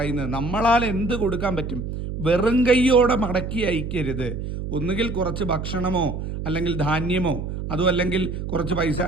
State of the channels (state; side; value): noise; right; hum, 6 dB below the sound